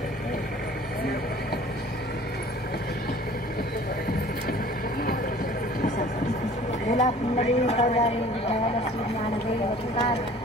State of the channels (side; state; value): both; normal; correlation 0.49